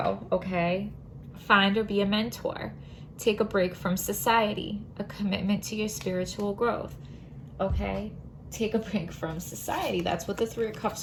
Okay. Find or be a mentor. Take a break from society. A commitment to your spiritual growth. Okay? Take a break from society. That's what the Three of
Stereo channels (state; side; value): identical; both; correlation 1.00